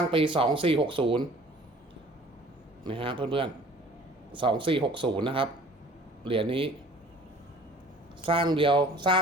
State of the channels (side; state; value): both; normal; correlation 0.50